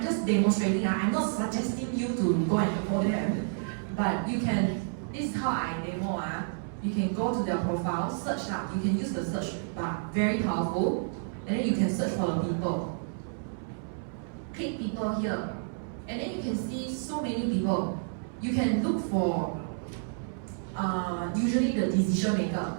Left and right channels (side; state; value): left; silent; 58 dB below the other